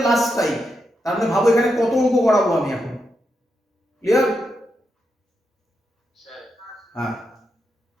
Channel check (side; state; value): both; normal; correlation 0.84